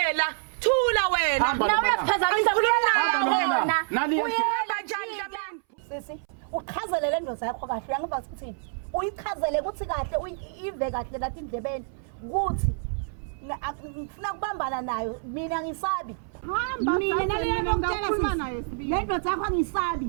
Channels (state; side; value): silent; left; 60 dB below the other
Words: La thula wena. Nawe uyaphazamisa kulona. Nani Uyeba njani Dlamini? Sisi, uqhazelele ndoza yakho kahle uyangiva ukuthini? Uyichazele ukuthi kahle uyive kahle lathi indlebeni ukuthi ngifuna kubambana nayo mina ngisabi. Hamba Mina nale ngokutshela sisi. Le ndoda yakho angisabi.